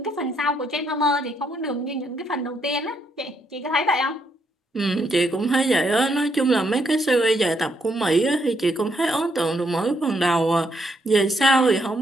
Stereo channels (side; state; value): both; normal; correlation 0.75